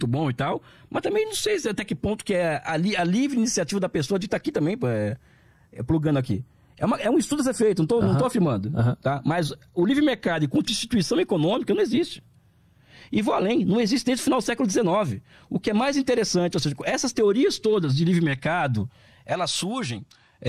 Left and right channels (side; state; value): both; identical; correlation 1.00